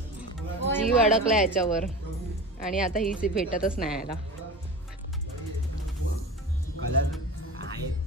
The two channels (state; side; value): normal; both; correlation 0.31